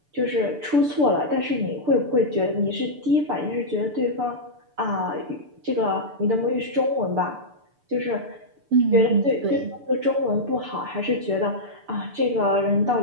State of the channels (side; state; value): left; late; 6.8 ms